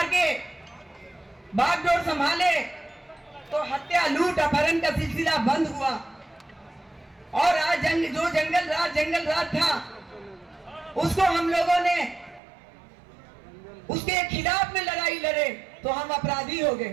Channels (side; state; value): left; drops out; at 12.4 s